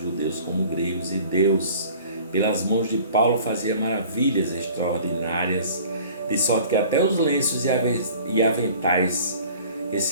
como gregos, e Deus, pelas mãos de Paulo, fazia maravilhas extraordinárias, de sorte que até os lenços e aventais que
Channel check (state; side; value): inverted; both; correlation -0.47